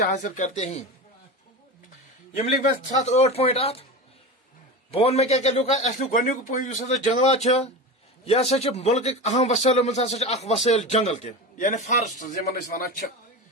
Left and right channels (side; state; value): both; normal; correlation 0.26